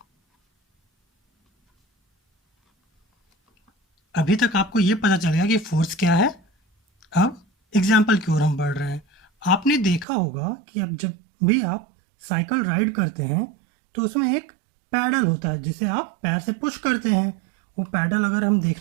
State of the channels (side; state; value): left; drops out; at 10.1 s